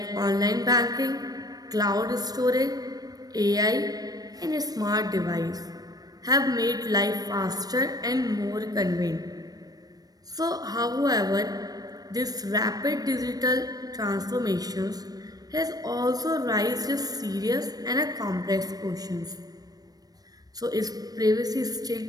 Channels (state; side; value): late; left; 0.19 ms